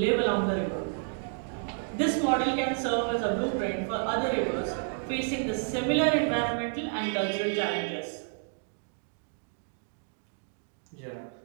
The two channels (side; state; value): left; silent; 56 dB below the other